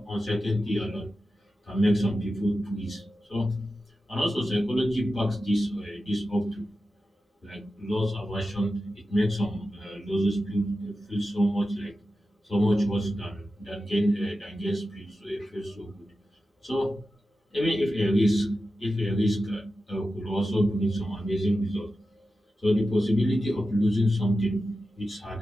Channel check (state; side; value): normal; both; correlation 0.92